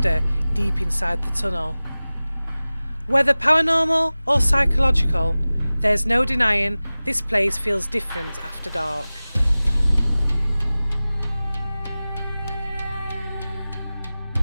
deep inside the tunnel. Whether paranormal or psychological, there's no denying this place feels different after dark.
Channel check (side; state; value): both; inverted; correlation -0.98